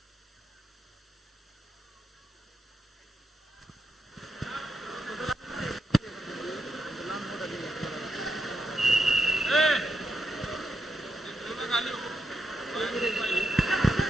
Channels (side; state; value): both; normal; correlation 0.83